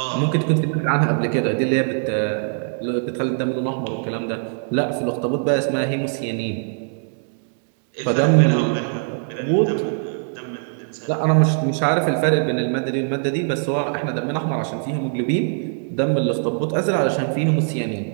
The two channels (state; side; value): silent; left; digital silence